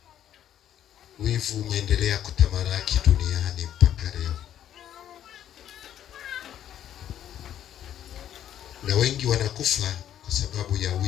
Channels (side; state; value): right; quieter; 10.7 dB